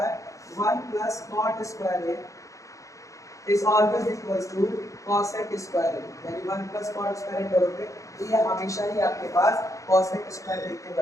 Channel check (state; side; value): late; right; 0.15 ms